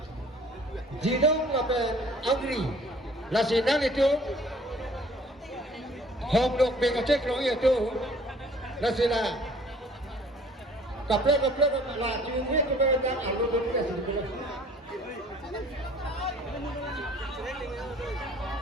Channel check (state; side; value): normal; both; correlation 0.53